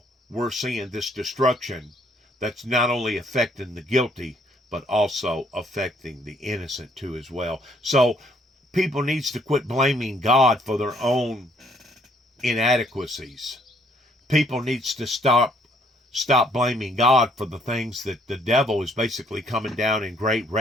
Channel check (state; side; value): normal; both; correlation 0.66